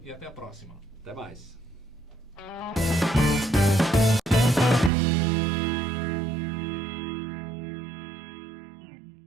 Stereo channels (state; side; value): drops out; left; at 4.9 s